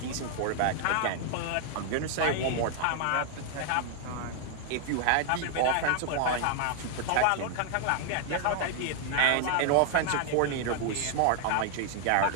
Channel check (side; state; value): both; different; correlation 0.00